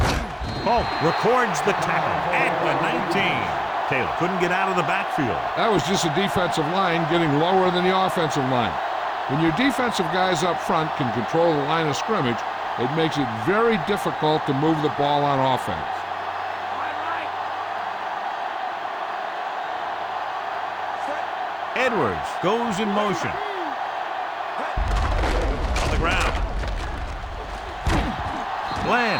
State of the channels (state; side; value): identical; both; correlation 1.00